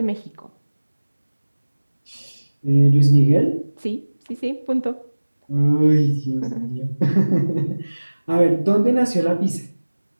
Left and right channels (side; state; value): both; inverted; correlation -1.00